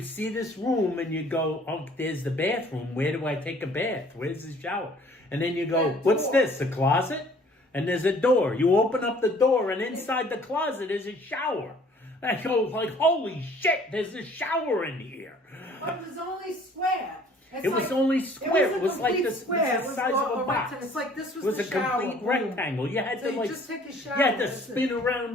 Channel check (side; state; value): both; normal; correlation 0.55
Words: see this room and you go, oh, there's the bathroom. Where do I take a bath? Where's the shower? And then you go, what's this, a closet? And there's a door. You open up the door and inside the closet is a shower. I go like, holy shit, there's a shower in here. But it was only square. It was only square. It was like the size of a box. It's like this was It was the a shower. complete rectangle. You had So to you like just take a shower. You had to spin